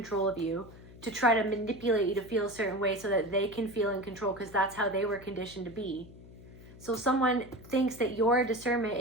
of you, to try to manipulate you to feel a certain way so that they can feel in control, because that's how they were conditioned to be. So someone thinks that your discernment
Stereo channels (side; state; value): left; noise; hum, 19 dB below the sound